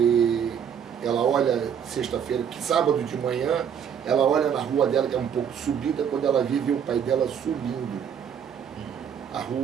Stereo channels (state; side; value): quieter; left; 8.1 dB